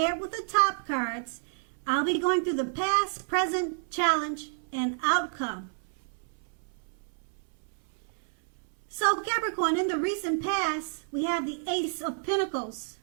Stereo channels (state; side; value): silent; left; 58 dB below the other